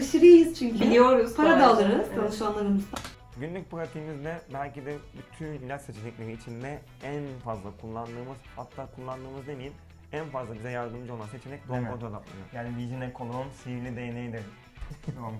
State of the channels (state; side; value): identical; both; correlation 1.00